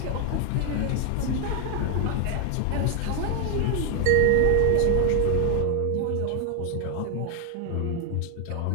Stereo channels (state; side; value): different; both; correlation 0.01